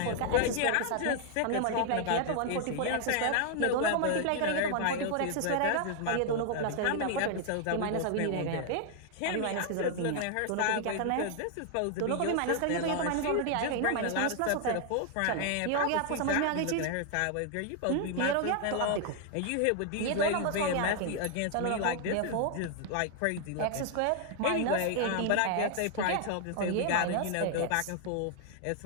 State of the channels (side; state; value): both; different; correlation 0.00